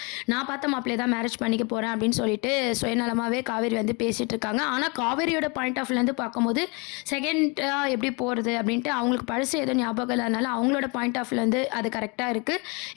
நான் பார்த்த மாப்பிள்ளையை தான் மேரேஜ் பண்ணிக்க போகிறேன் அப்படின்னு சொல்லிட்டு சுயநலமாகவே காவேரி வந்து பேசிகிட்டு இருக்காங்க. ஆனால் காவேரியோட பாயிண்ட் ஆஃப் வியூலேருந்து பார்க்கும்போது செகண்டாக எப்படி போகிறது அப்படின்ட்டு அவங்களுக்கு பழசு ஏதோ ஞாபகம் இல்லாதனால அவங்களோட பாயிண்ட் ஆஃப் வியூலேருந்து அது கரெக்டாக இருக்குது.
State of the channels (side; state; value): right; quieter; 30.4 dB